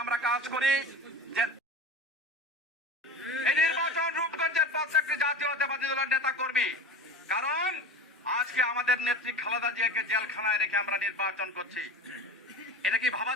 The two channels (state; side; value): normal; both; correlation 0.31